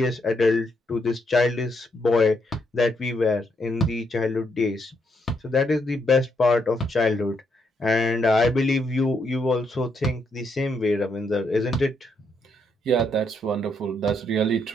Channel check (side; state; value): both; normal; correlation 0.76